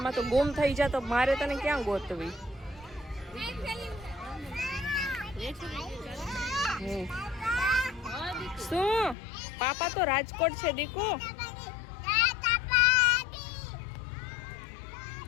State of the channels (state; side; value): drops out; right; at 9.2 s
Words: તો ગુમ થઈ જા તો મારે તને ક્યાં ગોતવી? શું પાપા તો રાજકોટ છે દીકો.